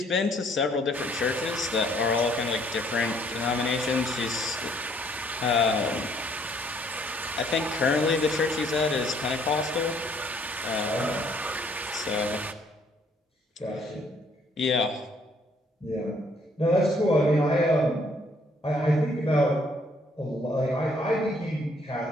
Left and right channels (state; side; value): normal; both; correlation 0.64